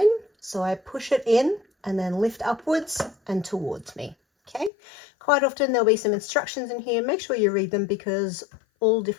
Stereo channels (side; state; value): right; drops out; at 4.7 s